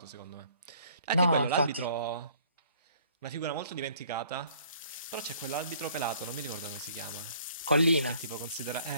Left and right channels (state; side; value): inverted; both; correlation -0.59